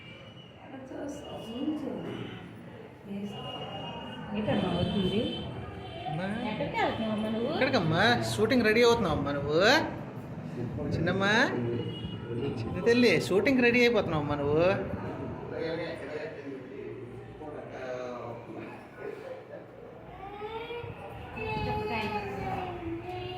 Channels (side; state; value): both; identical; correlation 1.00